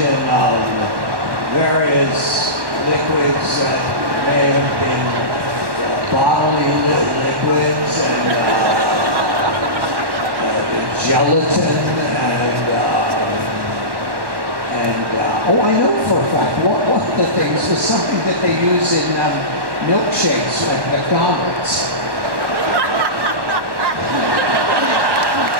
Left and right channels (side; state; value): left; late; 1.1 ms